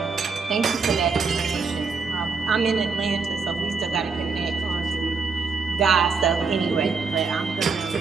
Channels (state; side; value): quieter; left; 4.9 dB